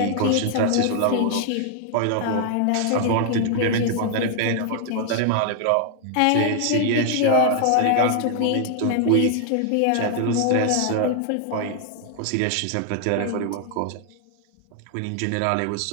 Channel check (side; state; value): both; different; correlation 0.00